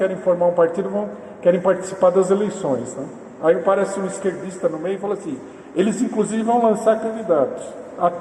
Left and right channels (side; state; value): both; identical; correlation 1.00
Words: formar um partido, querem participar das eleições, né? Aí aparece um esquerdista no meio e fala assim, eles inclusive vão lançar candidatos.